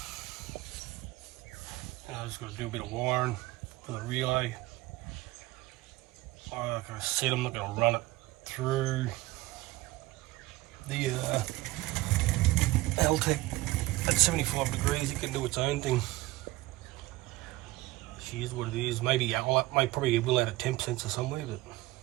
And I just got to do a bit of wiring, for the relay. Like I said, I'm not going to run it through the Altec at 75 degrees. It can do its own thing. She is what it is. Maybe probably will add a temp sensor somewhere,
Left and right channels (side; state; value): left; quieter; 18.8 dB